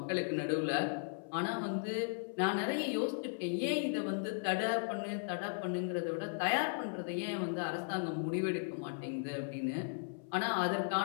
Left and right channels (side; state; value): right; silent; 53 dB below the other